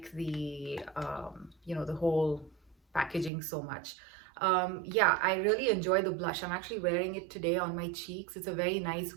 the, the whole packaging so much. Yeah, I really enjoy the blush. I'm actually wearing it today on my cheeks. It's a very nice,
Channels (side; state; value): left; drops out; at 3.3 s